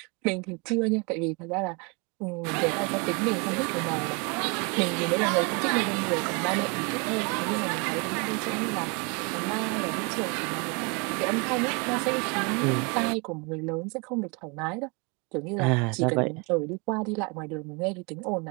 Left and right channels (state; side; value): quieter; left; 31.3 dB